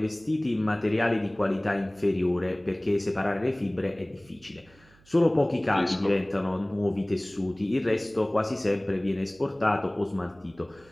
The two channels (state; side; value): noise; right; hum, 28 dB below the sound